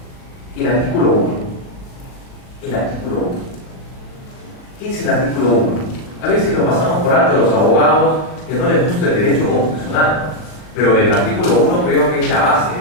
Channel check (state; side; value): late; right; 39 ms